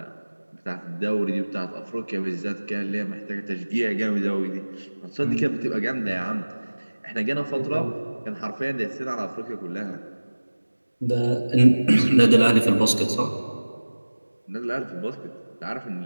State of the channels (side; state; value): both; inverted; correlation -1.00